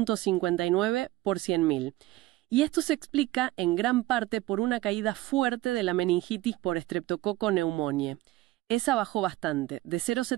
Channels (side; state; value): left; quieter; 17.5 dB